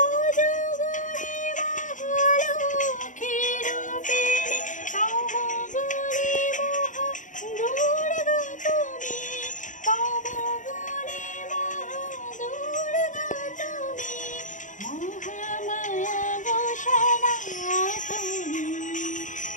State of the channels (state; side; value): late; right; 0.37 ms